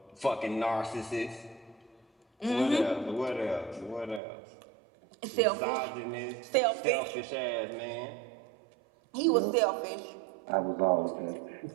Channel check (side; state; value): left; drops out; at 4.2 s